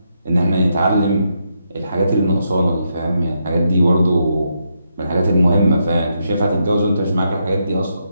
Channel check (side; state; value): both; inverted; correlation -0.81